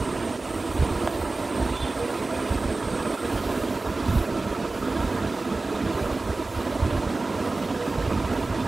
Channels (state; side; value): quieter; left; 3.4 dB